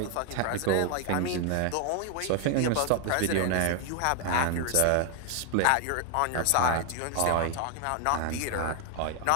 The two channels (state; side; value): different; both; correlation 0.00